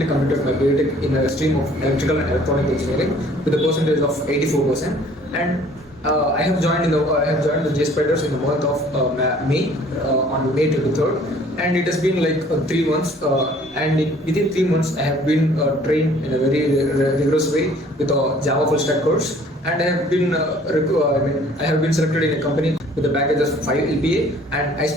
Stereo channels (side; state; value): both; normal; correlation 0.55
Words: completed my BTech in a stream of electrical and electronic engineering with a percentage of 84%. And I have joined the Jspiders in the month of May, on May 23rd, and it has been like 3 months. Within 3 months, I have been trained in a very rigorous way with a Java full stack course, and I have been selected in a company with a package of 5 LPA. And I